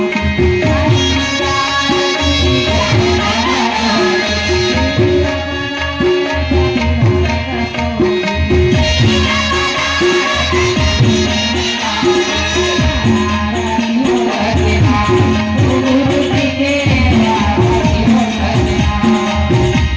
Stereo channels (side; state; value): both; identical; correlation 1.00